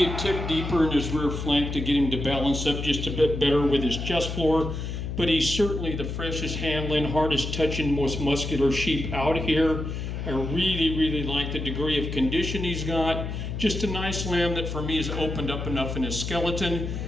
a tick deeper in his rear flank to get him to balance up just a bit better with his chest floor, but he's certainly the freshest handling, hardest touching, most muscular sheep out here. I really like the degree of condition he's got. Just a nice lamb that for me has opened up enough in his skeleton.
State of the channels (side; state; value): left; noise; hum, 5 dB below the sound